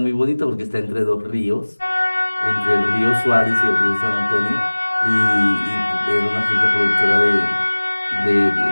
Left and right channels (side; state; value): both; inverted; correlation -1.00